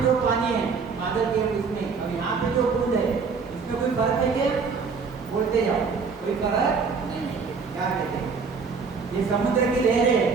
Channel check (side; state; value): left; quieter; 5.1 dB